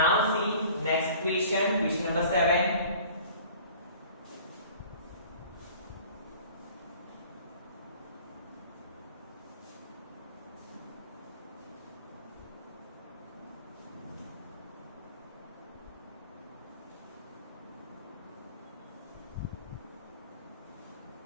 see next question, question number 7।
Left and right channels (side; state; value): both; inverted; correlation -0.47